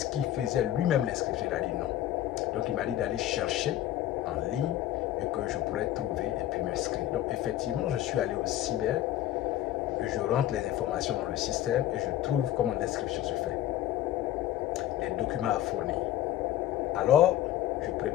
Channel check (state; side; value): quieter; right; 13.1 dB